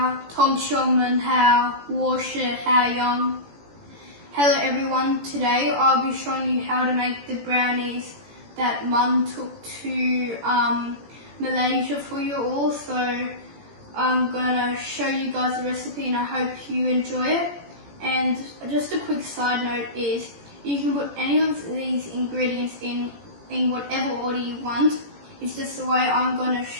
同学们好，我是海洋。Hello everyone, today I'll be showing you how to make the brownies that Mum took to Malaysia for you all. So I'm going to show you guys the recipe and I hope you enjoy it. And just a quick side note is you can put any of these ingredients in whatever order you want. It's just the way I'm going to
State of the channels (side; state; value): left; late; 17 ms